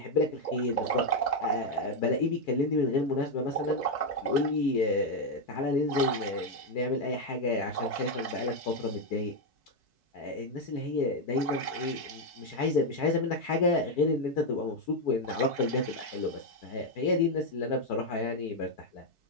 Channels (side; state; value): right; late; 4.6 ms